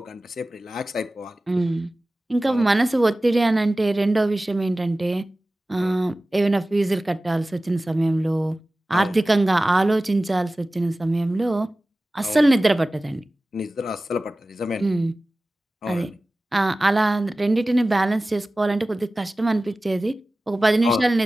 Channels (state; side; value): normal; both; correlation 0.97